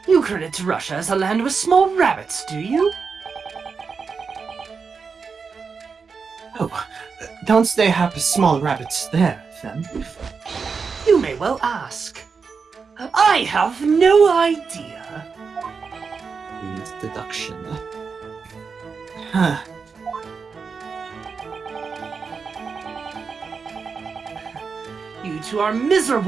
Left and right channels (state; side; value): quieter; left; 5.3 dB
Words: You credit Russia as a land with small rabbits, do you? Oh, don't they have small rabbits there, then? You may well ask. I have no idea. Needs deduction. Huh. You two are